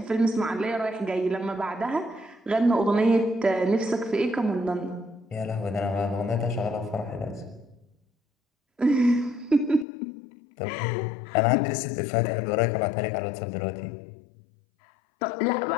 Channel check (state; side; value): drops out; right; at 9.9 s